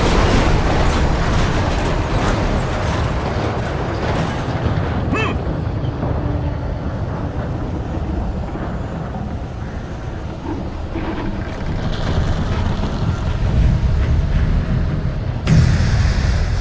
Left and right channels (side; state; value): both; identical; correlation 1.00